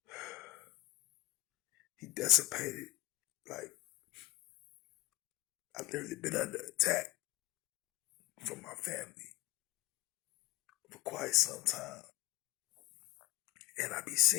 He dissipated. Like, I've literally been under attack from my family for quite some time. And I be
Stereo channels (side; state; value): right; quieter; 18.1 dB